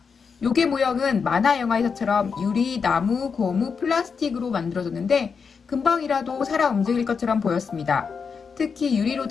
요괴 모형은 만화 영화에서처럼 유리, 나무, 고무, 플라스틱으로 만들어졌는데 금방이라도 살아 움직일 것처럼 보였습니다. 특히 유리로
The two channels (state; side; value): quieter; right; 5.7 dB